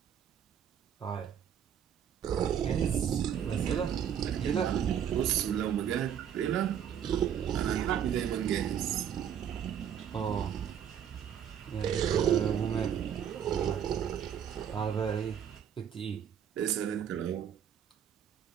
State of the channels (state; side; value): quieter; left; 8.9 dB